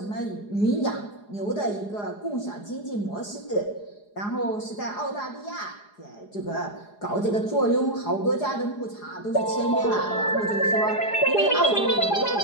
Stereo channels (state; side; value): late; right; 4.8 ms